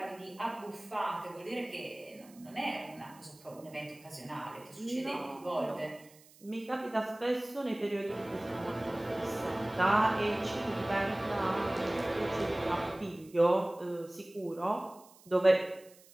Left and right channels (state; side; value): noise; right; hiss, 25 dB below the sound